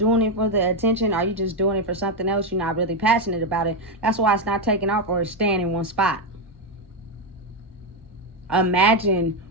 it for the attention? Are you just doing it for something else? You're not really passionate about it. That's why it's not taking off, or it's staying in one spot. Imagine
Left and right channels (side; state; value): both; normal; correlation 0.06